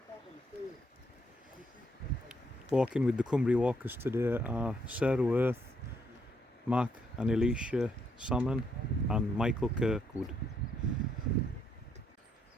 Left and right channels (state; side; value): normal; both; correlation 0.74